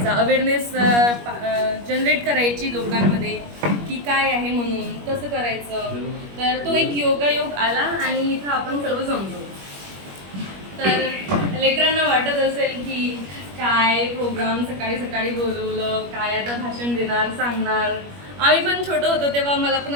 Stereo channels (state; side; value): late; left; 21 ms